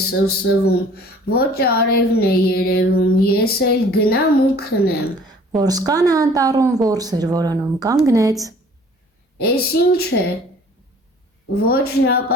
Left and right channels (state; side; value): normal; both; correlation 0.52